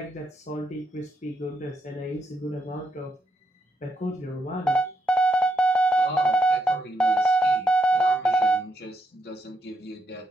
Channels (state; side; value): normal; both; correlation 0.79